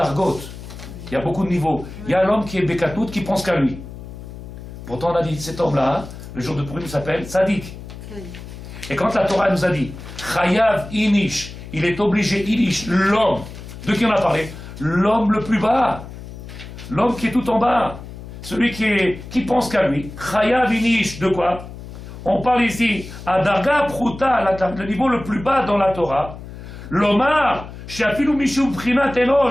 il y a beaucoup de niveaux. Il y a l'homme qui est Bekatout, qui pense qu'à lui. Pourtant, on a dit cet homme-là, le jour de Purim, s'appelle Tzadik. Et quand la Torah nous a dit Chayav Inish, il est obligé, Inish, l'homme, de qui on a parlé? L'homme le plus bas, l'homme qui est tout en bas, celui qui pense qu'à lui. Chayav Inish, de quoi? On parle ici à Darga Pruta, le niveau le plus bas dans la Torah. L'Omar, Shafilu Mishum Prinat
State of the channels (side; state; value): left; noise; hum, 13 dB below the sound